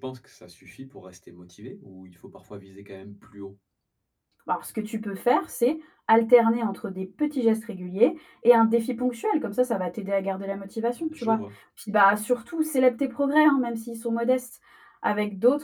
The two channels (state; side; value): identical; both; correlation 1.00